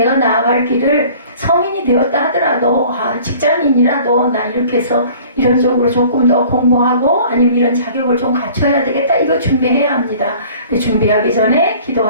나아갈 길을 성인이 되었다 하더라도 직장인이라도 나 이렇게 해서 이런 쪽으로 조금 더 공부하고 아니면 이런 자격을 좀 갖춰야 되겠다 이거 준비해야 합니다. 준비하기 전에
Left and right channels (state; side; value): inverted; both; correlation -0.49